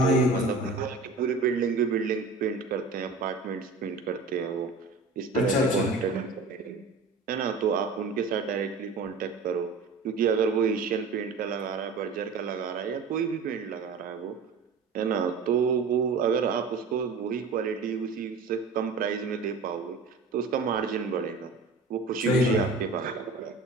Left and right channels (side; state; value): left; quieter; 4.1 dB